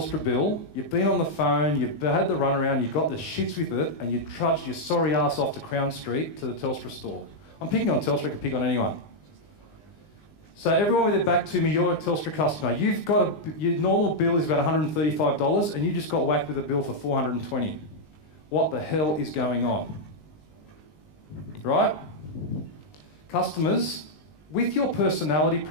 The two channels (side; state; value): right; late; 20 ms